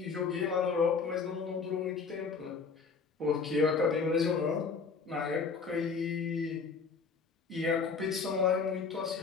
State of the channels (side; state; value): right; quieter; 5.1 dB